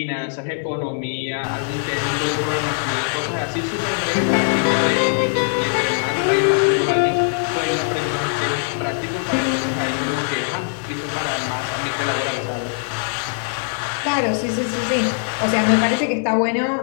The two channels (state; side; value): silent; right; 61 dB below the other